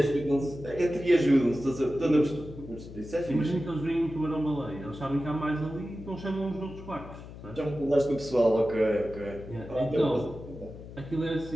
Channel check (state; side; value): noise; left; hum, 14 dB below the sound